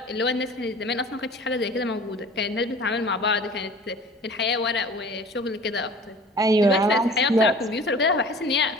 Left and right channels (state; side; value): normal; both; correlation 0.44